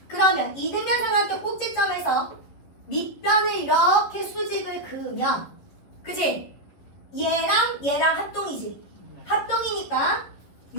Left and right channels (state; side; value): late; right; 11 ms